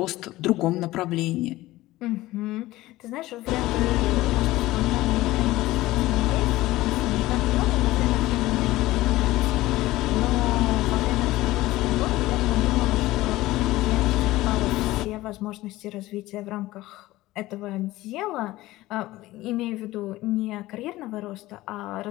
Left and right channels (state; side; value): quieter; right; 17.5 dB